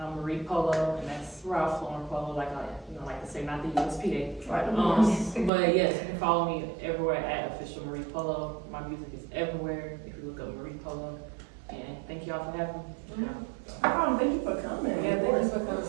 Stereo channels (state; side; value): drops out; left; at 5.5 s